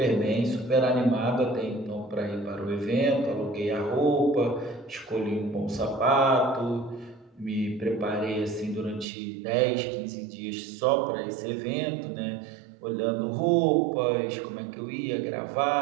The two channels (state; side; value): drops out; left; at 9.1 s